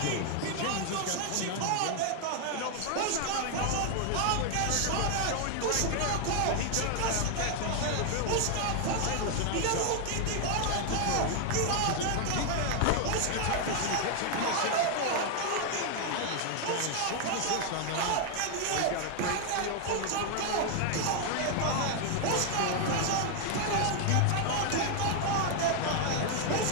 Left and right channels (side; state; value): both; different; correlation 0.00